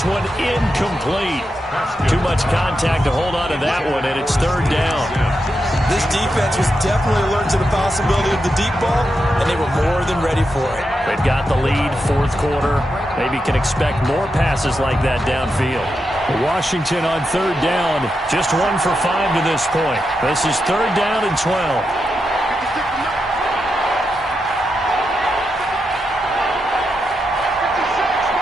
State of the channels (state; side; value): normal; both; correlation 0.86